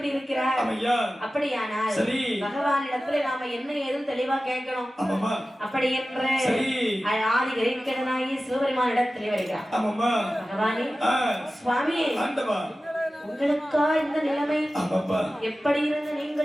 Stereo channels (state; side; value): normal; both; correlation 0.95